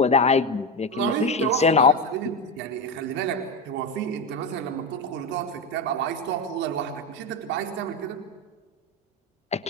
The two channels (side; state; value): both; normal; correlation 0.14